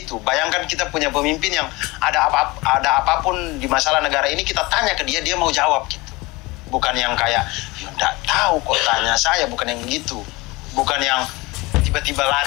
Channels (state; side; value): quieter; right; 22.8 dB